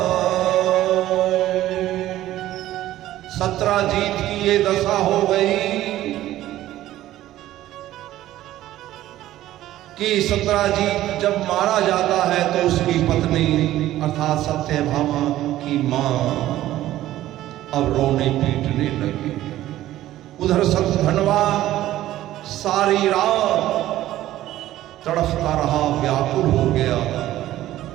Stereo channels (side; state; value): left; quieter; 14.2 dB